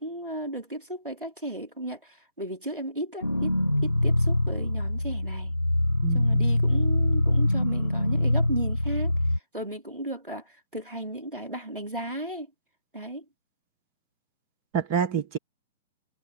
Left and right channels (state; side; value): inverted; both; correlation -0.81